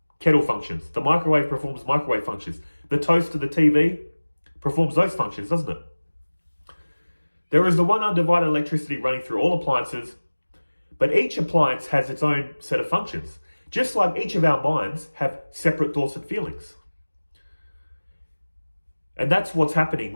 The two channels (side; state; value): both; inverted; correlation -1.00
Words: kettle functions. The microwave performs microwave functions. The toaster, the TV performs those functions, doesn't it? There is the one undivided electricity running through all appliances, but each appliance has its own set of functions. Just like each of our minds have separate thoughts and feelings. And that's what's happening